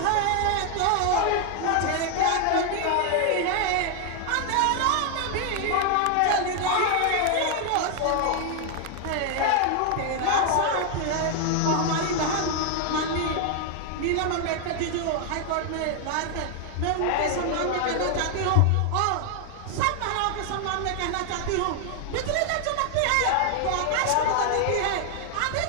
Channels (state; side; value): different; both; correlation 0.00